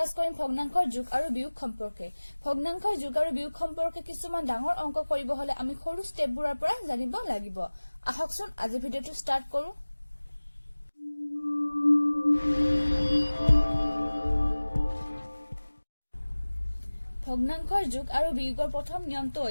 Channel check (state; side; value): inverted; both; correlation -1.00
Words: কৰিম ভগ্নাংকৰ যোগ আৰু বিয়োগ সম্পৰ্কে। ভগ্নাংকৰ যোগ আৰু বিয়োগ সম্পৰ্কে কিছুমান ডাঙৰ অংক কৰিব হলে আমি সৰু স্টেপবোৰৰ পৰা জানিব লাগিব। আহকচোন আজি ভিডিওটো ষ্টাৰ্ট কৰো। ভগ্নাংকৰ যোগ আৰু বিয়োগৰ প্ৰথম নিয়মটো